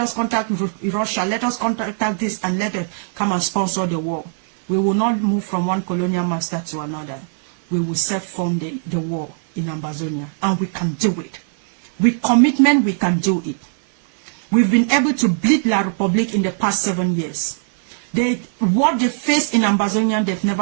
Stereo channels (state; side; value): silent; left; 61 dB below the other